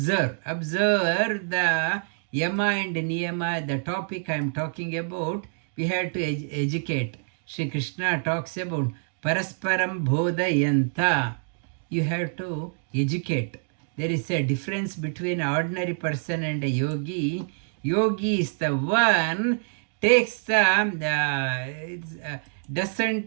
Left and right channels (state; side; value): silent; left; 61 dB below the other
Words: the yama and niyama, the topic I am talking about. We have to educate. Sri Krishna talks about parasparam bodhayanta. You have to educate. There is a difference between an ordinary person and a yogi. Yogi is the one takes the